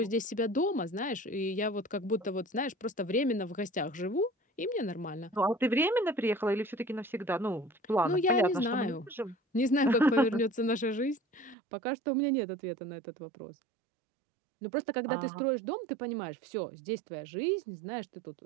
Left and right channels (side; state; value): left; drops out; at 11.6 s